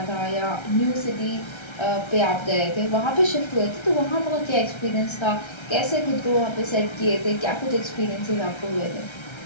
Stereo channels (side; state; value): right; late; 1.3 ms